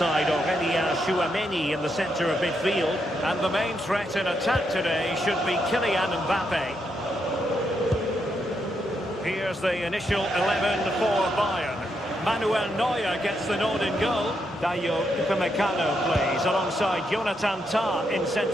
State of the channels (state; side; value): normal; both; correlation 0.80